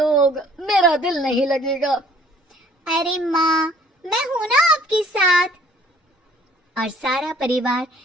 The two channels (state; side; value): normal; both; correlation 0.56